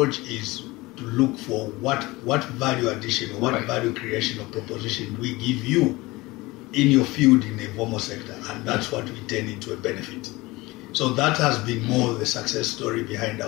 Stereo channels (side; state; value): right; quieter; 21.5 dB